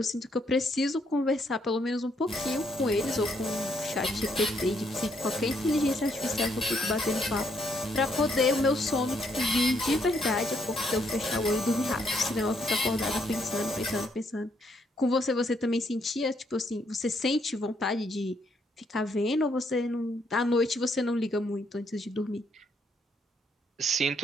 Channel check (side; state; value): both; normal; correlation 0.73